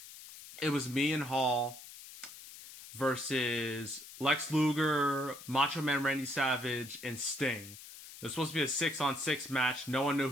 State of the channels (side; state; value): left; noise; hiss, 15 dB below the sound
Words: It was me and Hall versus Lex Luger, Macho Man Randy Savage, and Sting. It was supposed to be a 6-on-6 match. No one knew